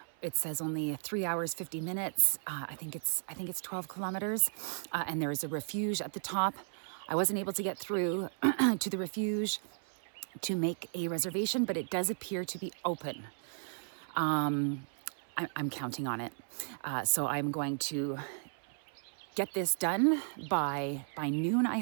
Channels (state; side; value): silent; left; 55 dB below the other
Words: It says only 3 hours, 50 minutes. I think it's 12 kilometers. And there is a refuge at the top. I wasn't able to get through to the refuge to make a reservation, but it does appear to be open. I'm counting on it. So I'm going to get this done by noon, I